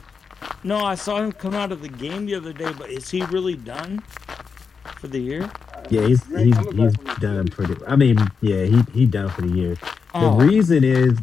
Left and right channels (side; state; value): right; quieter; 5.6 dB